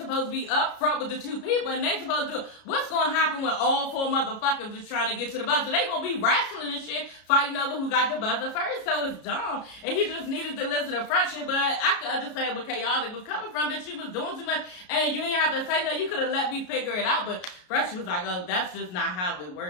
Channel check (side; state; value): right; late; 33 ms